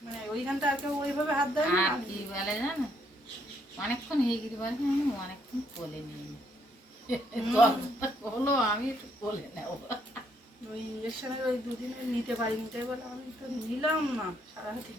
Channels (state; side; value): normal; both; correlation 0.71